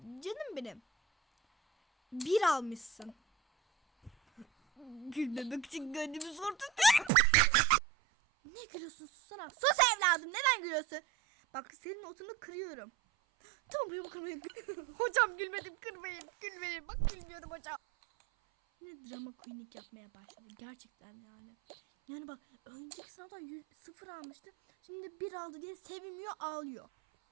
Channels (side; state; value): left; drops out; at 7.1 s